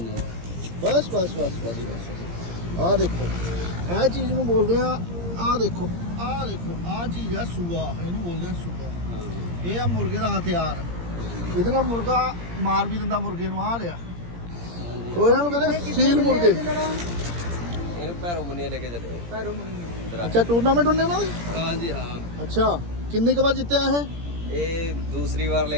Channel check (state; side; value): late; left; 17 ms